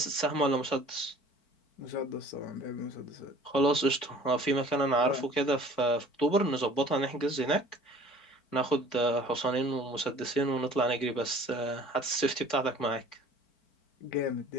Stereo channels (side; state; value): right; late; 4.5 ms